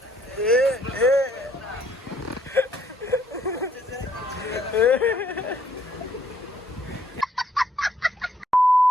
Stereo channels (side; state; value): both; normal; correlation 0.66